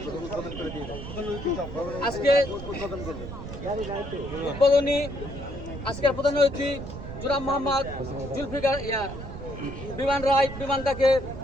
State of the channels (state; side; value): noise; right; rumble, 9 dB below the sound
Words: আজকে উদ্বোধনী আজকের প্রধান অতিথি জনাব মোহাম্মদ জুলফিকার বিমান রায় বিমানটাকে